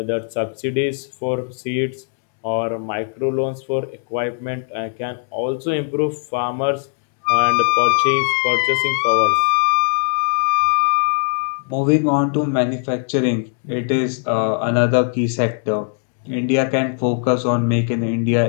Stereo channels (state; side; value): silent; right; 60 dB below the other